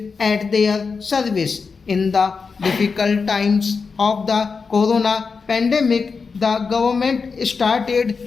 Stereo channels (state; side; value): quieter; right; 5.0 dB